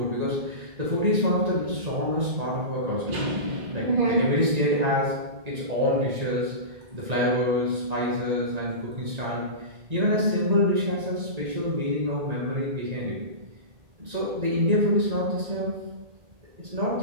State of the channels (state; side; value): late; left; 1.9 ms